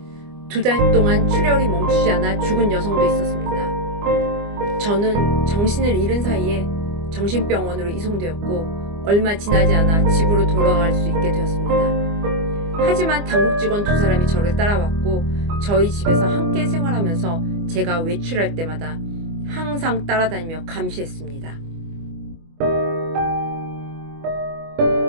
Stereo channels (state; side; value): late; left; 25 ms